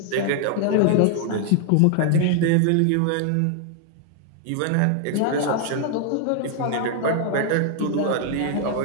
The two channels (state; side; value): different; both; correlation 0.00